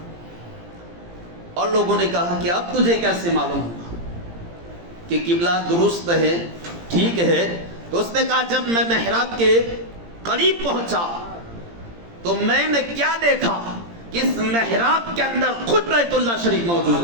اور لوگوں نے کہا کہ اب تجھے کیسے معلوم ہوا کہ قبلہ درست ہے، ٹھیک ہے؟ تو اس نے کہا جب میں محراب کے قریب پہنچا تو میں نے کیا دیکھا کہ اس محراب کے اندر خود بیت اللہ شریف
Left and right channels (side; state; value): left; late; 17 ms